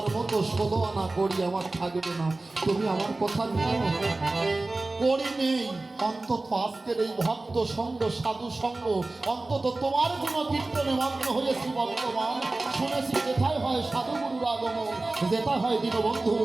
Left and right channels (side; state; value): left; quieter; 3.1 dB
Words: মতো 16 আনা কড়ি আমার থাকবে না। তুমি আমার কথা নিও, কড়ি নেই, অন্তত আজকের এই ভক্ত সঙ্গ, সাধু সঙ্গ, অন্তত তোমার কোনো কীর্তনে মগ্ন হয়েছি বর্তমান। শুনেছি যেথায় হয় সাধুগুরুর আগমন, যেটা হয় দীনবন্ধুর